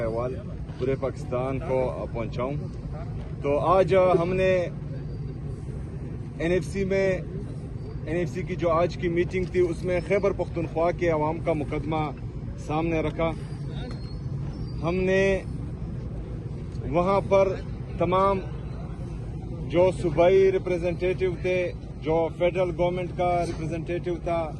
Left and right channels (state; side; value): identical; both; correlation 1.00